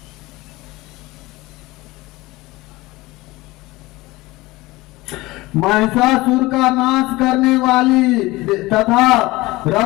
महिषासुर का नाश करने वाली तथा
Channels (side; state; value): right; quieter; 20.2 dB